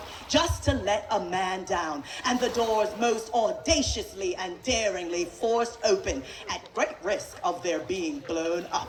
just to let a man down, and the doors most audaciously and daringly forced open at great risk of their being blown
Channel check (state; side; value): identical; both; correlation 1.00